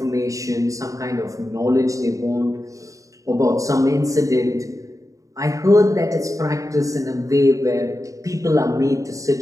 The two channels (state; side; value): late; left; 0.16 ms